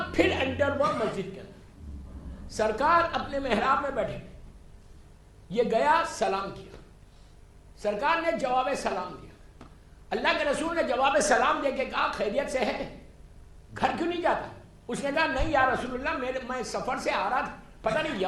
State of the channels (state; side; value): identical; both; correlation 1.00